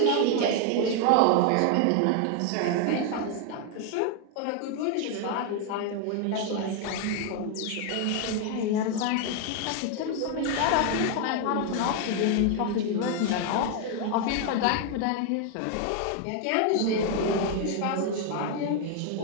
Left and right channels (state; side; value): different; both; correlation 0.01